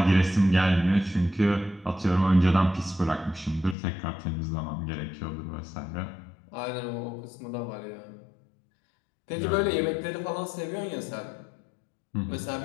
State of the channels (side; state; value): right; drops out; at 3.8 s